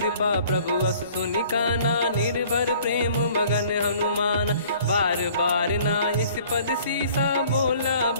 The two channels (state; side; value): inverted; both; correlation -0.54